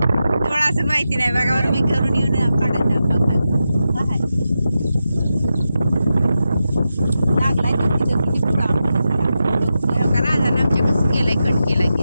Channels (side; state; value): both; inverted; correlation -0.90